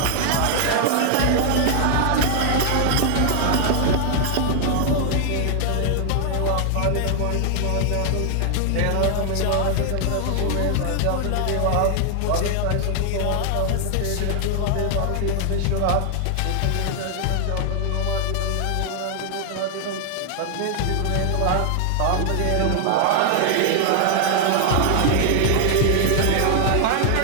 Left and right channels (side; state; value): both; different; correlation 0.00